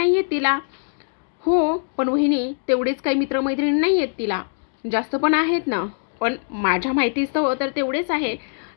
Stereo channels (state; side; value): silent; right; digital silence